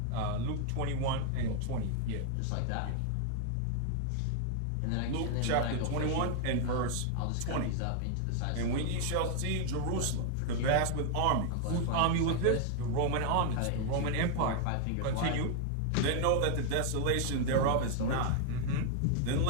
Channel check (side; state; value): both; different; correlation 0.00